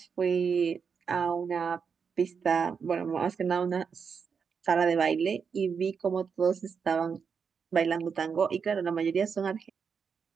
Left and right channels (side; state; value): left; quieter; 6.2 dB